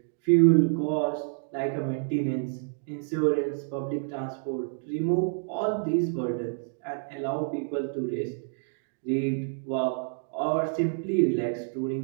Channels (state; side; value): silent; left; digital silence